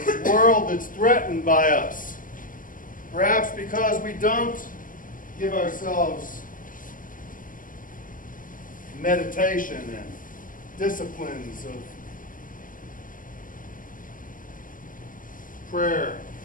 world that's threatened by us, perhaps because we don't give ourselves meditation and disciplines of prayer,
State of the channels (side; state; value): right; late; 0.39 ms